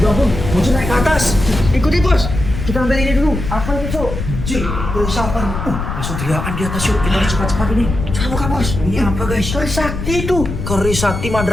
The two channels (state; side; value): noise; left; rumble, 5 dB below the sound